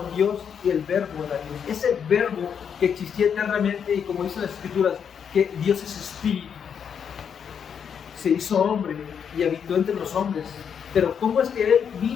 Dios y el Verbo era Dios. Ese Verbo que existía eternamente y como dicen las Escrituras, que Dios es Espíritu, se hizo hombre y habitó entre los hombres. Pero ¿cómo es que Él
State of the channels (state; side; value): quieter; right; 7.5 dB